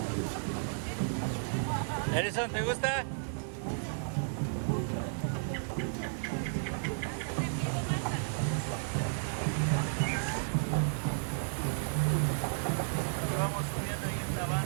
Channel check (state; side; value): silent; left; digital silence